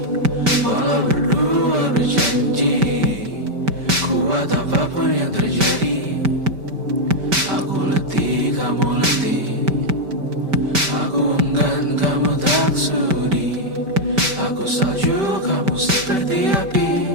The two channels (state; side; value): late; left; 5.1 ms